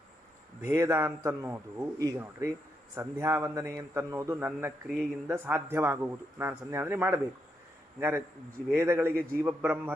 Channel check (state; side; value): normal; both; correlation 0.81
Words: ಭೇದ ಅಂತನ್ನೋದು ಈಗ ನೋಡ್ರಿ, ಸಂಧ್ಯಾವಂದನೆ ಅಂತನ್ನೋದು ನನ್ನ ಕ್ರಿಯೆಯಿಂದ ಸಾಧ್ಯವಾಗುವುದು. ನಾನು ಸಂಧ್ಯಾವಂದನೆ ಮಾಡಬೇಕು. ಹಂಗಾರೆ ವೇದಗಳಿಗೆ